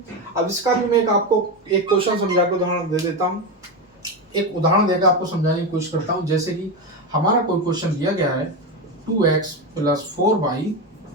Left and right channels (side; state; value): both; normal; correlation 0.14